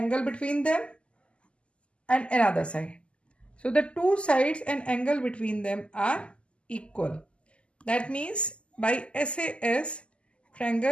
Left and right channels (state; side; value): late; right; 0.054 ms